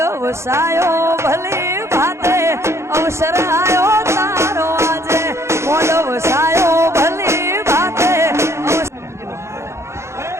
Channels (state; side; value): late; left; 0.13 ms